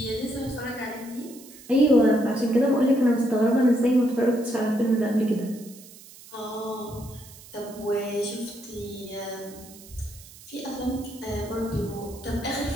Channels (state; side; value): noise; right; hiss, 20 dB below the sound